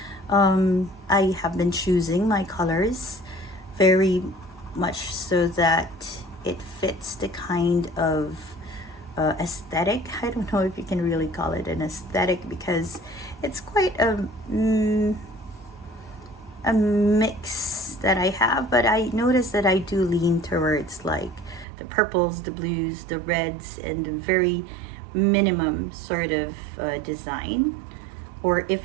I have been choosing my colors very much so that it fits the kind of aesthetic. I don't know if you can really call it an aesthetic because it's quite a mix that I have, but I notice that I do lean towards like the purples, the blues, the reds, and the very minimum sort of design. Or if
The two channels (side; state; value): left; drops out; at 21.7 s